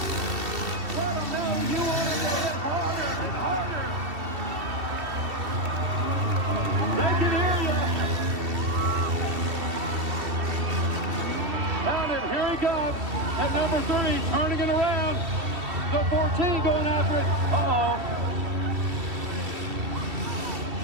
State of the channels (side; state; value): left; late; 2.7 ms